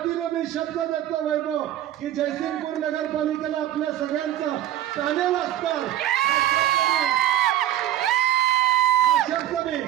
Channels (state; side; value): quieter; left; 12.7 dB